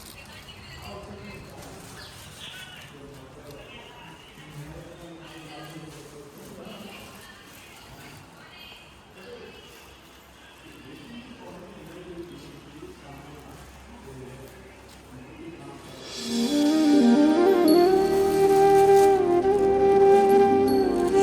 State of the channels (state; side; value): identical; both; correlation 1.00